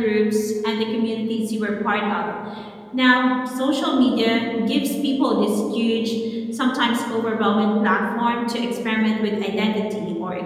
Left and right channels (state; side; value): identical; both; correlation 1.00